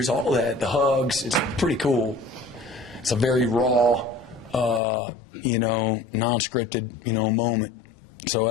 all that, the hugs. It's pretty cool. It's a very raw, non-scripted, moment. So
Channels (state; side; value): drops out; right; at 4.8 s